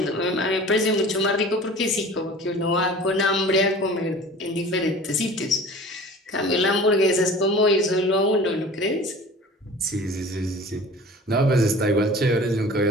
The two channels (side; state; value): both; normal; correlation 0.42